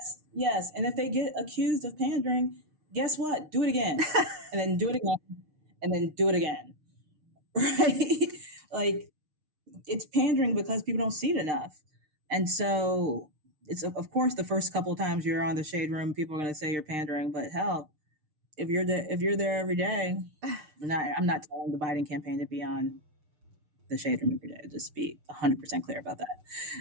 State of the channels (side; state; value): left; late; 6.6 ms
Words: yes. And if they get accused of pandering, guess what? Do it again. And then do it again. And then do it again. Right? Like, it's pandering because people don't see it enough. And so it's, of course, the first couple of times you're on the Shade Room, people are going to say you're pandering. But hell, if you're there every day, I'm not telling the Biden campaign to be on the Shade Room every day. Just be 100% clear about